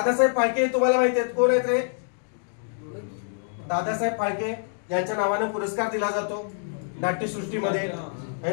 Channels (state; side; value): silent; right; digital silence